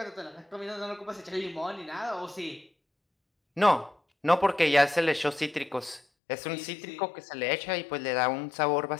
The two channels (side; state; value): right; drops out; at 6.0 s